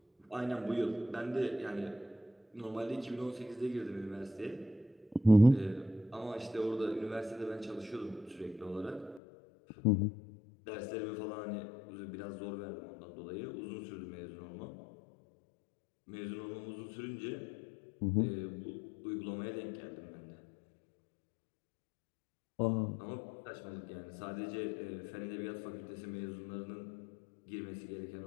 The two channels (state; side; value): drops out; right; at 9.2 s